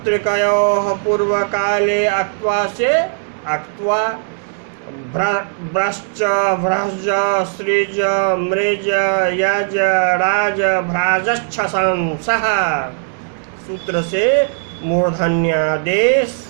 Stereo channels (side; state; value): left; silent; digital silence